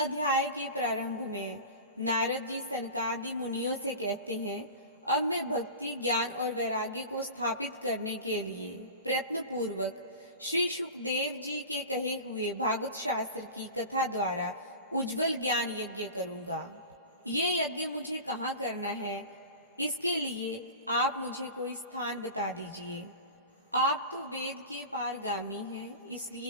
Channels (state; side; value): inverted; both; correlation -0.33